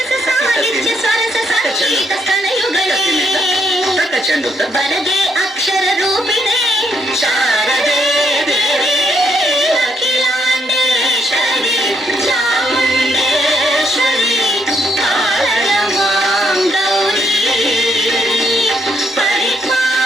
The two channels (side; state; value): both; normal; correlation 0.74